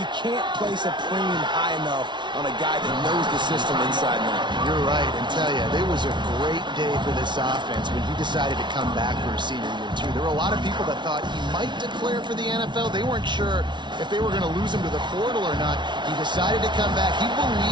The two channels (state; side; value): late; left; 0.22 ms